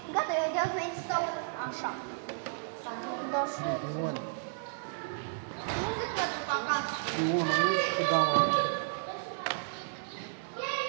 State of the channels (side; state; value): left; silent; digital silence